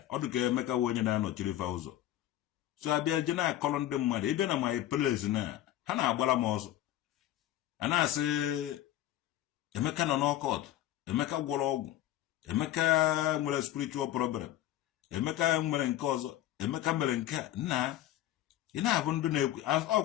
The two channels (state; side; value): quieter; right; 13.4 dB